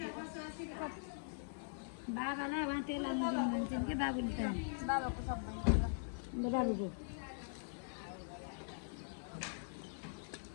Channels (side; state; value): right; silent; digital silence